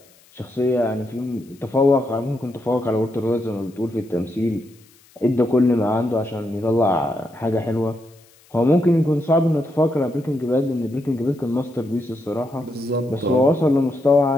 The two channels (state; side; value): noise; left; hiss, 29 dB below the sound